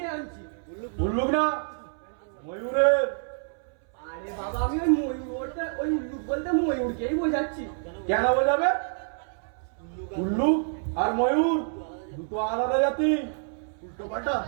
আনছি। উল্লুক না, ময়ূরের। আরে বাবা, আমি ওই ময়ূর বলতে, ওই উল্লুক বলতে ময়ূরকেই বোঝাচ্ছি। কেন বোঝাবে? উল্লুক আর ময়ূর দুটো আলাদা জাতি। উল্টো পাল্টা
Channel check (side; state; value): left; silent; 60 dB below the other